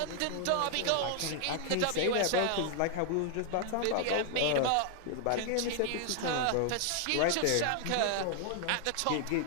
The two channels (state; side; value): different; both; correlation 0.00